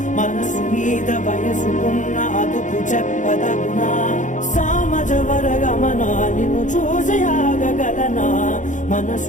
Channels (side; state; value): right; late; 0.36 ms